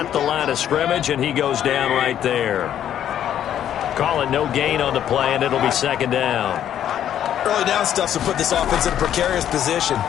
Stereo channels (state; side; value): quieter; right; 10.4 dB